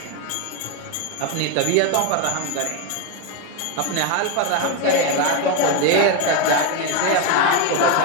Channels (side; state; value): both; different; correlation 0.02